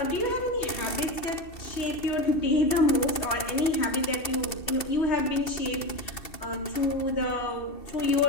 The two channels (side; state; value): right; late; 2.7 ms